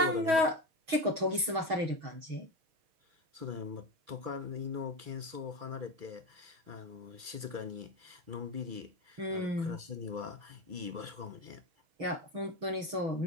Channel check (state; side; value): late; left; 6.2 ms